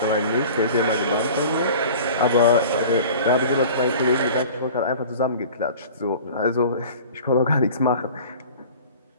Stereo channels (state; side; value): inverted; both; correlation -0.42